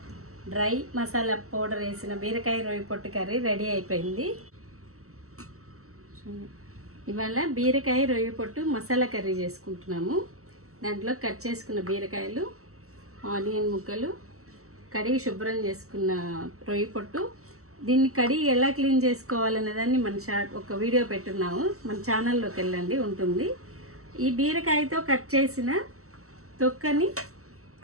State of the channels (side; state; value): left; late; 0.64 ms